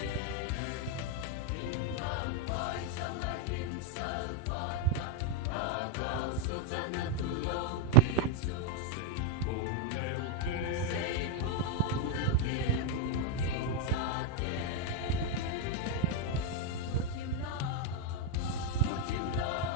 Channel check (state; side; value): different; both; correlation 0.00